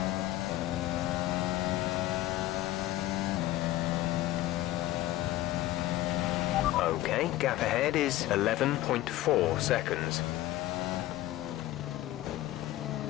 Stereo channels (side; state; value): right; quieter; 15.5 dB